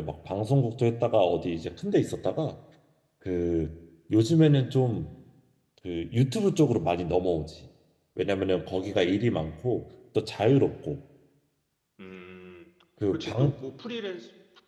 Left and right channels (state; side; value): identical; both; correlation 1.00